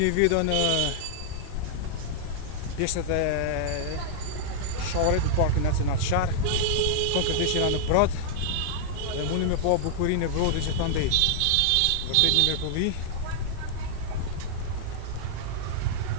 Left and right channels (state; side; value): different; both; correlation -0.01